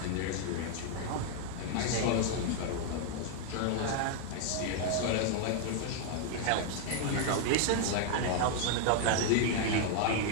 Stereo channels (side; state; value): both; different; correlation 0.00